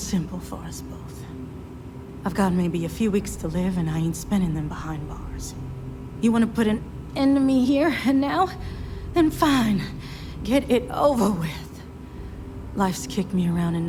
for us both? I've got maybe a few weeks to live, and I ain't spending them behind bars. You want to put an end to me here and now? Then fine. Get it over with. Life's kicked me around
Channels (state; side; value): identical; both; correlation 1.00